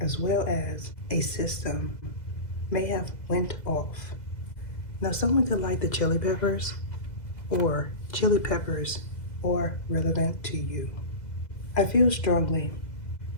as well as a system may have went off. Now, someone could like the chili peppers, or chili peppers are relevant to you. I feel strongly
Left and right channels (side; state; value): right; late; 2.0 ms